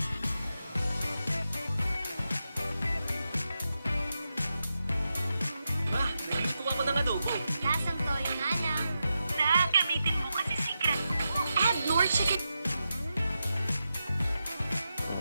Ma, nagluto ako ng adobo. Lasang toyo nga lang. Gamitin mo kasi secret ko. Add more chicken.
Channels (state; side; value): inverted; both; correlation -0.88